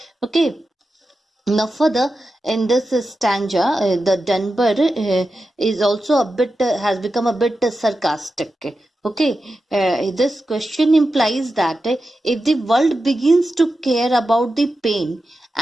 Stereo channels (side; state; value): both; normal; correlation 0.91